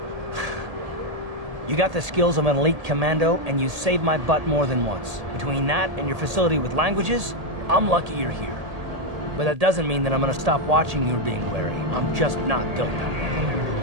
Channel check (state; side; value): late; left; 1.8 ms